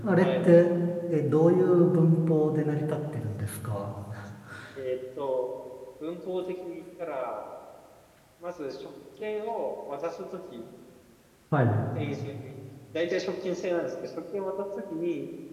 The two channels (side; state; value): both; identical; correlation 1.00